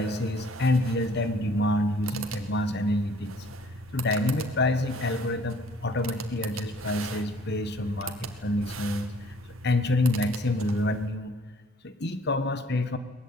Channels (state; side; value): normal; both; correlation 0.57